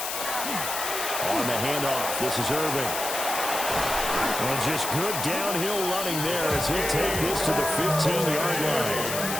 On the handoff, this is Irvin. And just good downhill running there as he'll take this to the 15-yard line.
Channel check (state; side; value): noise; left; hiss, 4 dB below the sound